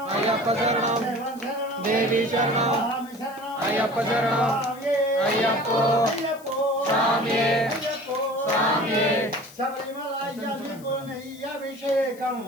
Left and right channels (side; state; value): left; noise; hiss, 23 dB below the sound